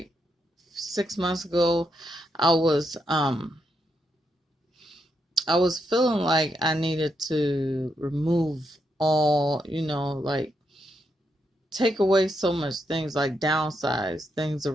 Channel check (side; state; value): both; normal; correlation 0.81